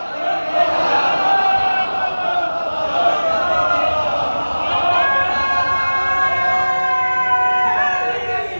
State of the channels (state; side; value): inverted; both; correlation -1.00